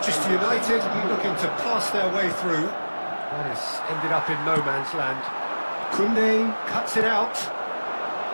United looking to pass their way through. That has ended up in no man's land. Koundé cuts it out.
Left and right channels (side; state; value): both; inverted; correlation -1.00